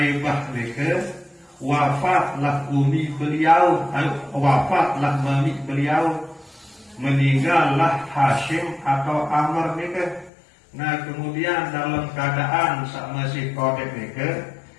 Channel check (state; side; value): drops out; right; at 10.3 s